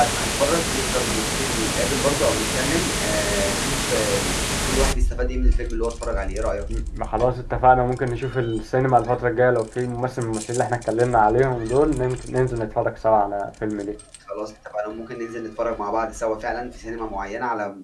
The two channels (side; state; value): both; identical; correlation 1.00